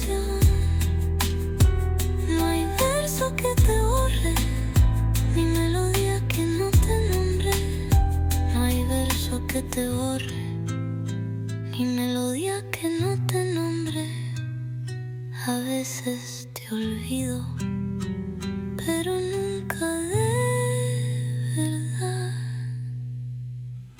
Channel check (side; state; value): both; identical; correlation 1.00